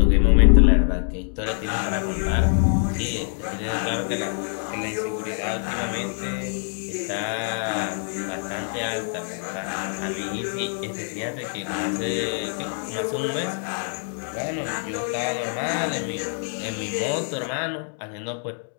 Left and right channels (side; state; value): right; silent; 60 dB below the other